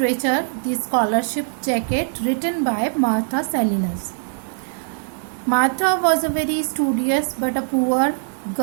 The Scholarship Jacket, written by Martha Salinas. Martha was a very studious but a poor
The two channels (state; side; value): silent; left; digital silence